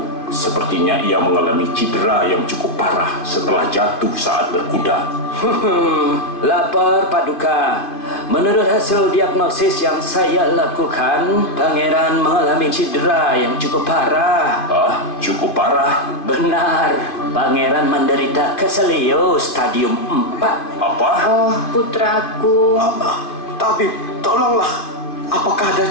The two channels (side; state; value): right; late; 2.5 ms